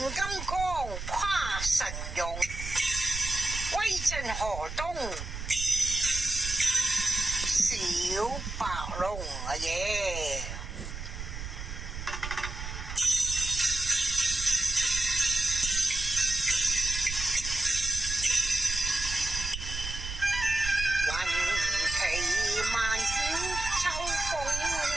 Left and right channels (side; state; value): right; noise; rumble, 7 dB below the sound